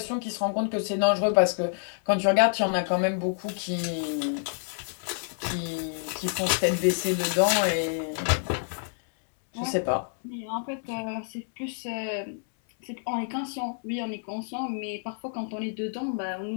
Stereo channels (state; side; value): silent; right; 59 dB below the other